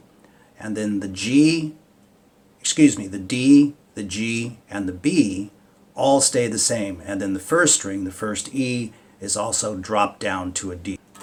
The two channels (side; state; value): both; identical; correlation 1.00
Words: and then the D, the G, and the B all stay the same. And then the 1st string, the 1st E, is also dropped down to a D.